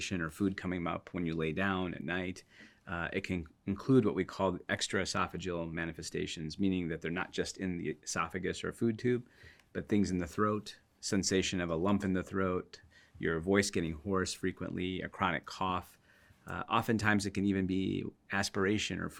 or food coming up when you lay down at night. It can include what we call extraesophageal manifestations, meaning that they're not just in the esophagus or food tube, but things in the throat, sensation of a lump in the throat, your voice getting hoarse frequently, a chronic cough. Oftentimes it can even be aspiration or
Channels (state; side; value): identical; both; correlation 1.00